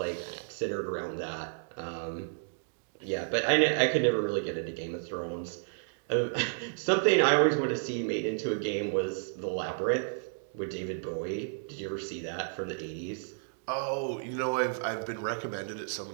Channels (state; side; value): silent; left; digital silence